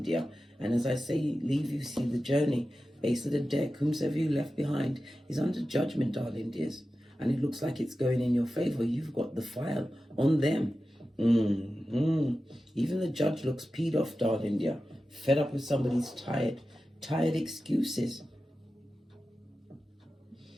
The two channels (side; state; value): both; normal; correlation 0.93